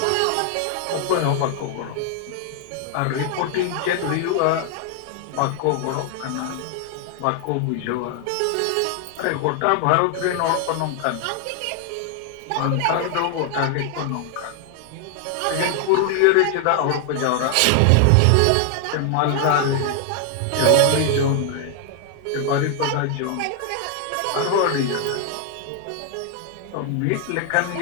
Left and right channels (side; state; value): both; different; correlation 0.00